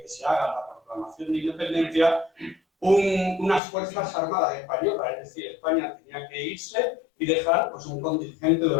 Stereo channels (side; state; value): right; drops out; at 3.6 s